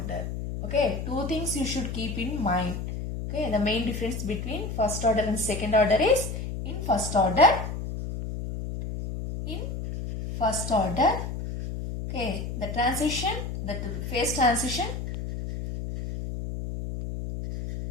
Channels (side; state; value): left; noise; hum, 5 dB below the sound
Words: Okay, two things you should keep in mind. Okay, the main difference between first order and second order is in first order, okay, the phase transition